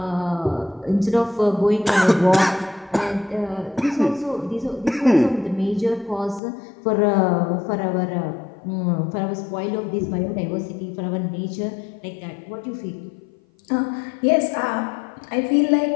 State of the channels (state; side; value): drops out; right; at 6.4 s